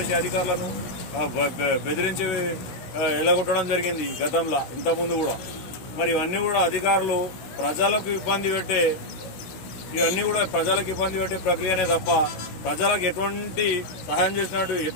అధికారులను బెదిరించి ఎలగొట్టడం జరిగింది గతంలో, ఇంతకుముందు కూడా. మరి ఇవన్నీ కూడా అధికారులు ప్రజలకు ఇబ్బంది పెట్టే ప్రక్రియనే తప్ప ప్రజలకు ఎటువంటి సహాయం చేసినట్టు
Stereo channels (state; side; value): late; right; 16 ms